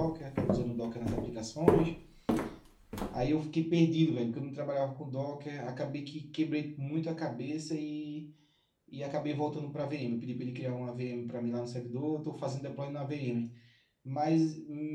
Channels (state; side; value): identical; both; correlation 1.00